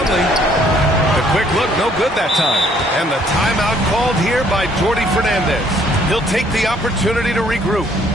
The quick look, no good that time. And the timeout called here by Jordy Fernandez. He'll take the opportunity to regroup.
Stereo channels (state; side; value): normal; both; correlation 0.63